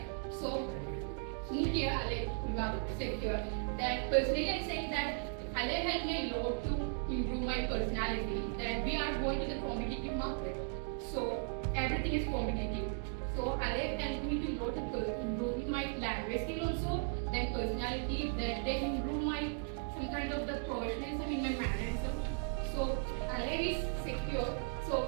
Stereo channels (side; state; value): left; silent; 53 dB below the other